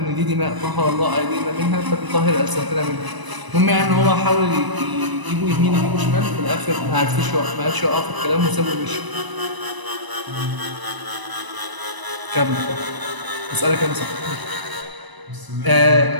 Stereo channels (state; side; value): late; left; 1.0 ms